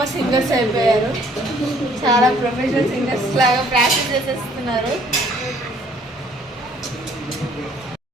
సింగర్స్ అయిపోయారు. చాలా ప్రొఫెషనల్ సింగర్స్ లాగా ప్రాక్టీస్ చేసేస్తున్నారు.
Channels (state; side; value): normal; both; correlation 0.60